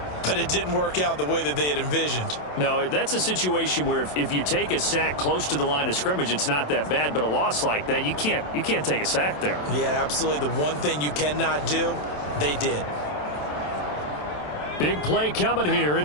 but it didn't work out the way that they had envisioned. No, that's a situation where if you take a sack close to the line of scrimmage, it's not that bad, but a loss like that, you can't take a sack there. Yeah, absolutely. The one thing you cannot do, they did. Big play coming here.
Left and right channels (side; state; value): right; late; 27 ms